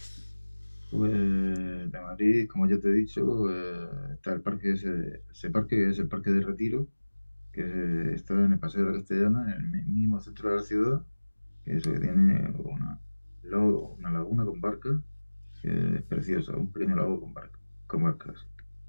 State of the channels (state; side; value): inverted; both; correlation -1.00